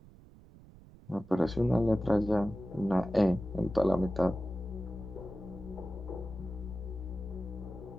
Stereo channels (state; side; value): noise; right; rumble, 21 dB below the sound